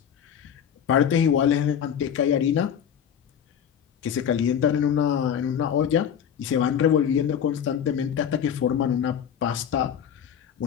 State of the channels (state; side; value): quieter; right; 8.5 dB